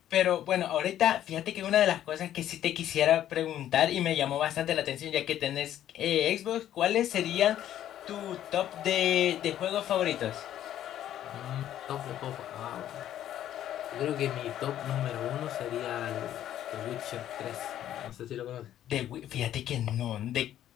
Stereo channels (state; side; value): quieter; right; 11.7 dB